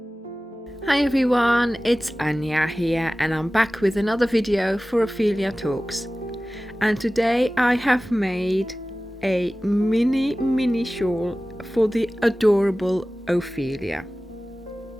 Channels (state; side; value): normal; both; correlation 0.97